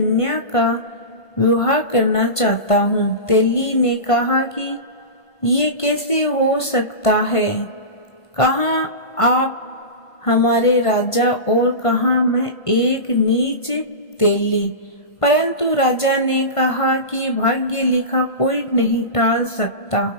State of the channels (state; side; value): late; right; 1.5 ms